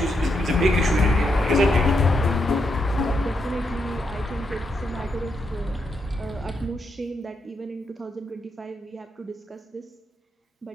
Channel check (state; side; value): normal; both; correlation 0.81